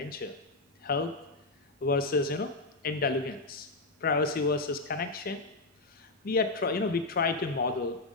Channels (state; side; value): quieter; right; 3.2 dB